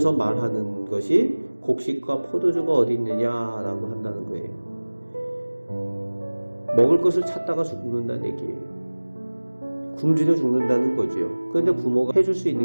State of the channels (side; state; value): both; inverted; correlation -1.00